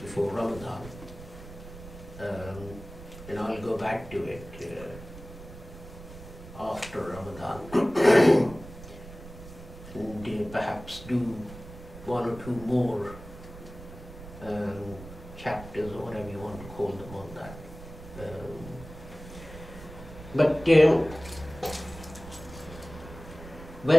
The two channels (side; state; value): right; noise; rumble, 15 dB below the sound